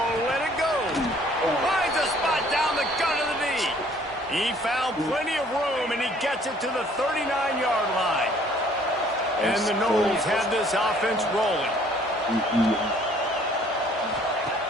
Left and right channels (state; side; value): normal; both; correlation 0.58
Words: let it go. Finds a spot down the gut of the knee. He found plenty of room, and he gets it to the 39-yard line. And the Noles have this offense rolling.